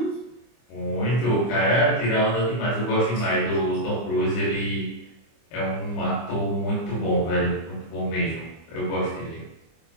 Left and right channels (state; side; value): late; right; 25 ms